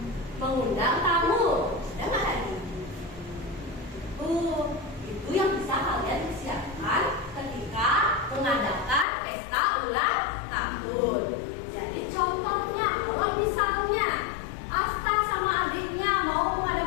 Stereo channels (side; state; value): right; drops out; at 9.1 s